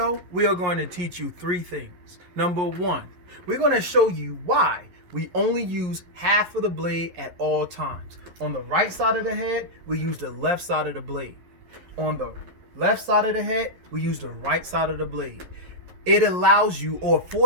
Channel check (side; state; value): left; late; 11 ms